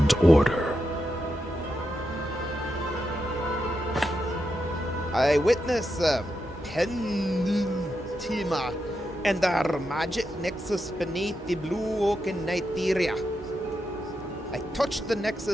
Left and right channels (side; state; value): both; normal; correlation 0.86